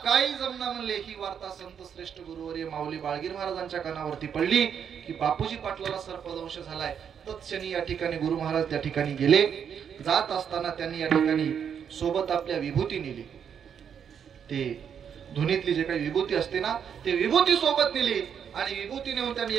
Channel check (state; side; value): quieter; left; 7.9 dB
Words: काही जमना म्हणले. ही वार्ता संत श्रेष्ठ गुरुवर्य माऊली बाळगीर महाराजांच्या कानावरती पडली की बापूजी पाटलाला सर्पदंश झालाय. तत्क्षणी या ठिकाणी गुरु महाराज त्या ठिकाणी गेले. जात असताना त्यांनी या ठिकाणी सोबत आपल्या विभूती नेली. ते धुनीतली जे काही विभूती असते ना ते विभूती सोबत नेली आणि विभूती नेऊन त्यांनी